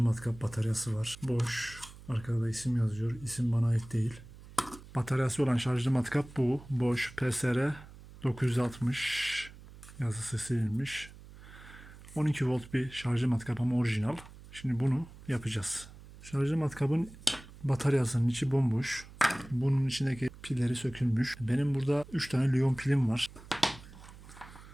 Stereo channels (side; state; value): right; noise; hum, 18 dB below the sound